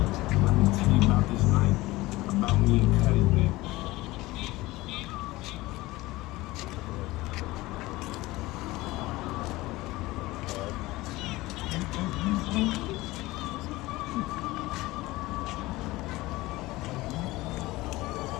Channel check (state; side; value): quieter; right; 19.5 dB